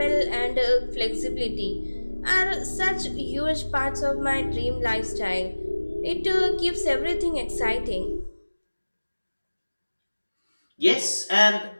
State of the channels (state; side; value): inverted; both; correlation -1.00